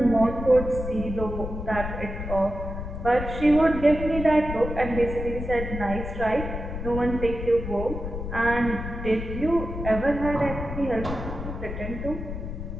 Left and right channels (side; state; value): left; noise; rumble, 6 dB below the sound